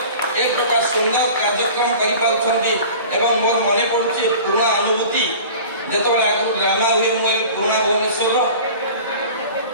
ଏକ ପ୍ରକାର ସୁନ୍ଦର କାର୍ଯ୍ୟକ୍ରମ କରିପାରୁଛନ୍ତି। ଏବଂ ମୋର ମନେ ପଡୁଛି ପୁରୁଣା ଅନୁଭୂତି, ଯେତେବେଳେ ଆଗରୁ ଡ୍ରାମା ହୁଏ, ମୁଁ ଏଇ ପୁରୁଣା ଭୁବନେଶ୍ୱରର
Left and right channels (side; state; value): both; inverted; correlation -0.41